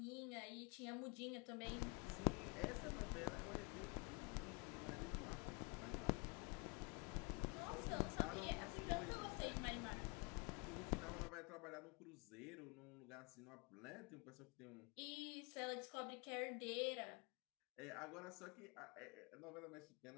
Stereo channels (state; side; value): quieter; right; 32.4 dB